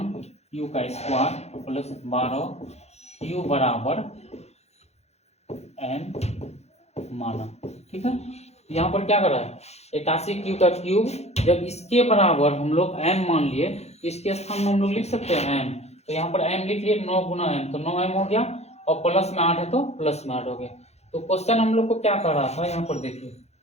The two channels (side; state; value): right; late; 0.31 ms